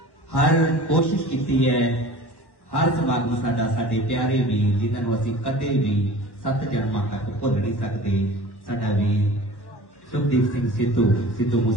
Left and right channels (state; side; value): late; right; 1.1 ms